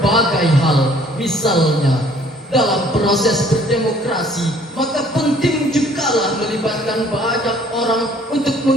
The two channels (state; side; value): normal; both; correlation 0.57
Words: hal. Misalnya, dalam proses berdemokrasi, maka penting jugalah melibatkan banyak orang untuk